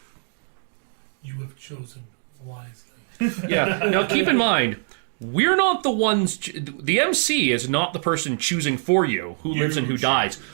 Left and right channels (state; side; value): silent; left; 63 dB below the other